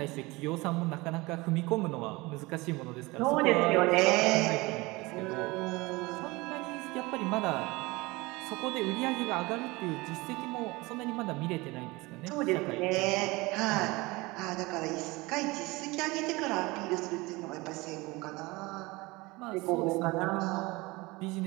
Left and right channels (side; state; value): left; quieter; 22.8 dB